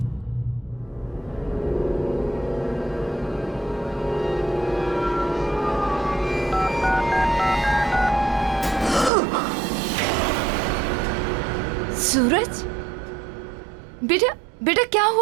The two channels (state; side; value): drops out; left; at 9.1 s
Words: सूरज, बेटा क्या